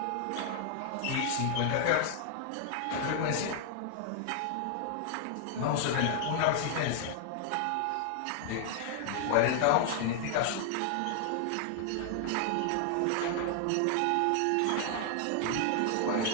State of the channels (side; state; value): both; different; correlation 0.00